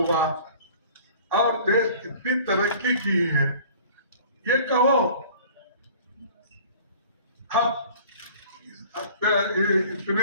और देश कितनी तरक्की की है, ये कहो। अब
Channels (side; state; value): both; inverted; correlation -0.48